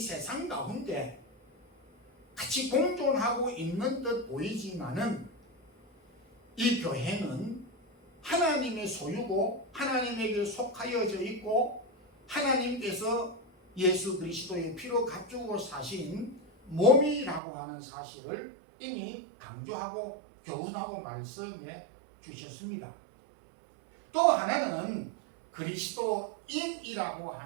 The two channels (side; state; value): left; drops out; at 17.4 s